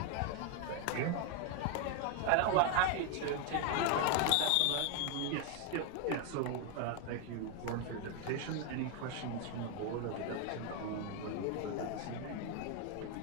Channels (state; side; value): different; both; correlation 0.01